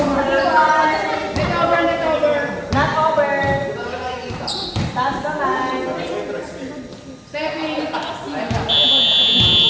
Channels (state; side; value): identical; both; correlation 1.00